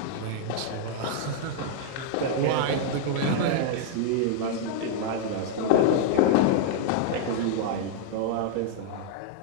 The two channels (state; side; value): different; both; correlation 0.00